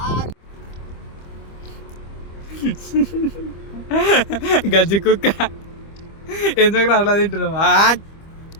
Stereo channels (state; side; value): late; right; 25 ms